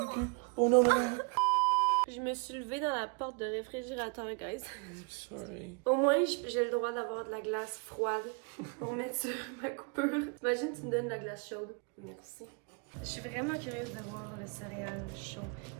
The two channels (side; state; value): left; quieter; 35.5 dB